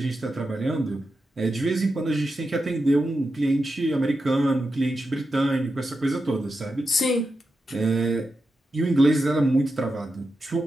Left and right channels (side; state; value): both; normal; correlation 0.89